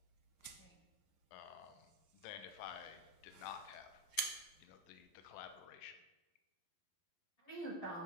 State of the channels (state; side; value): late; right; 11 ms